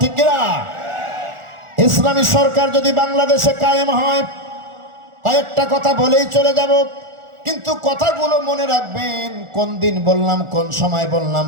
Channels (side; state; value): left; late; 1.4 ms